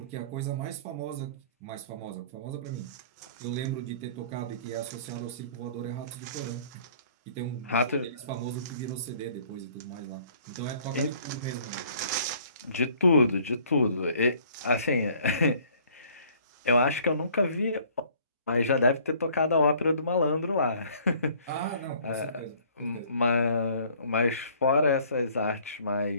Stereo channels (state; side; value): inverted; both; correlation -0.56